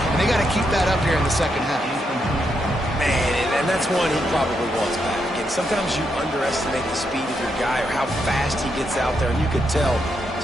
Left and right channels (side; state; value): both; normal; correlation 0.81